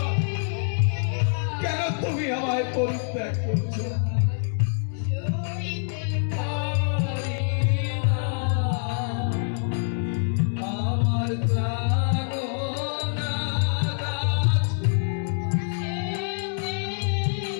কেন তুমি আমায় পরিত্যাগ করছো? আমার জানো না দাস,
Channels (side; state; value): right; silent; digital silence